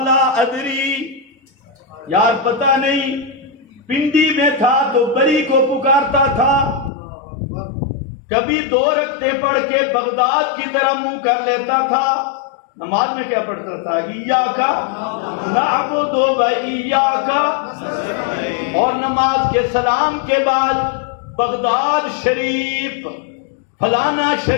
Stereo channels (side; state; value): right; drops out; at 6.9 s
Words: لا ادری، یار پتہ نہیں. پنڈی میں تھا تو بری کو پکارتا تھا، کبھی 2 رکعتیں پڑھ کے بغداد کی طرح منہ کر لیتا تھا. نماز میں کیا پڑھتا تھا؟ ایاکا نعبد و ایاکا، اور نماز کے سلام کے بعد بغداد شریف، فلانا